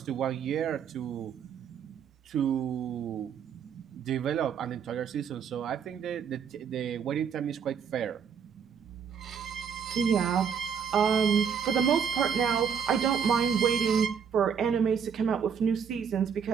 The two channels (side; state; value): left; quieter; 7.2 dB